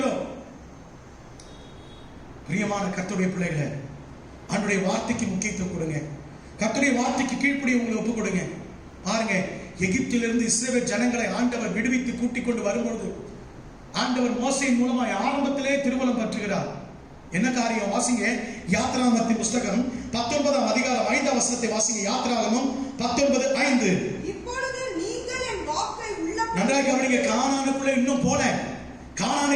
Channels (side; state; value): both; identical; correlation 1.00